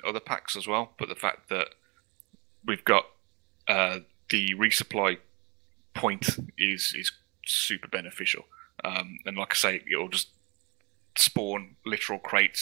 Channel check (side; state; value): left; quieter; 28.6 dB